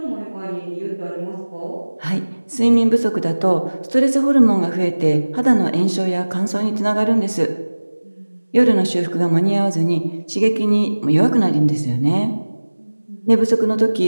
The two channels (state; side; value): inverted; both; correlation -1.00